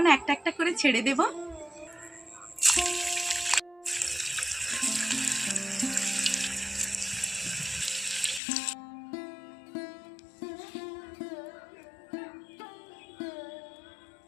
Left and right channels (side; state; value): right; drops out; at 8.4 s